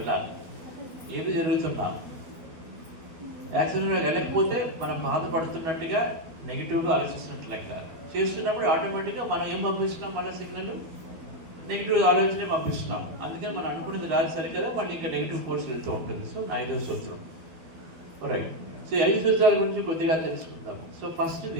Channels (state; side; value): late; left; 12 ms